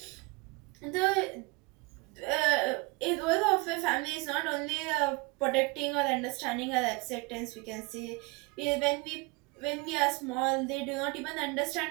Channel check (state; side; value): quieter; left; 27.0 dB